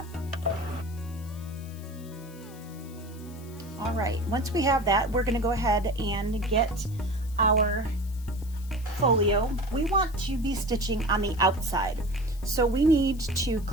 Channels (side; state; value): left; noise; hiss, 22 dB below the sound